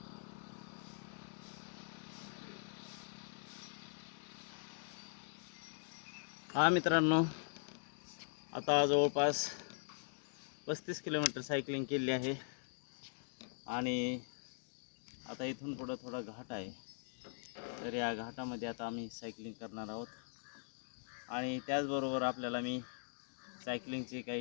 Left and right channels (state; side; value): silent; right; digital silence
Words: मित्रांनो, आता जवळपास 35 किलोमीटर सायकलिंग केली आहे. आणि आता इथून पुढं थोडा घाट आहे. तर या घाटामध्ये आता आम्ही सायकलिंग करणार आहोत. आणि त्याचबरोबर आपल्याला मी सायकलिंगचे